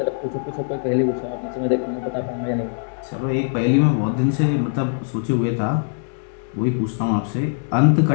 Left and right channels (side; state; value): right; silent; digital silence